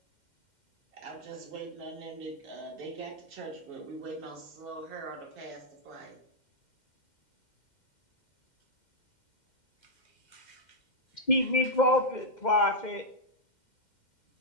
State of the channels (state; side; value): late; right; 2.1 ms